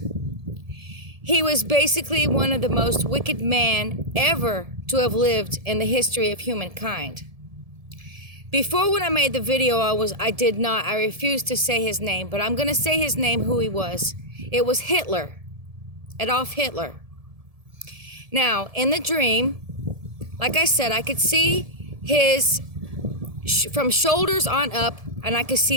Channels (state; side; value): late; left; 1.7 ms